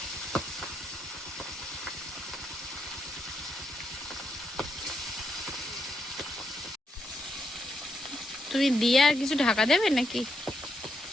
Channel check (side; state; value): both; normal; correlation 0.80